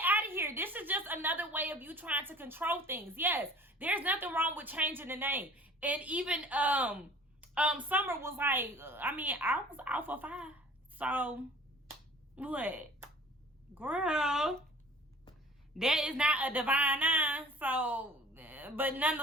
of here. This is just another way of you trying to control things. Yes, there's nothing wrong with changing the name. And even Summer was like, I mean, I was Alpha Phi. So, what? Girl, that is not a divine nine. So, but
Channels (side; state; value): both; normal; correlation 0.47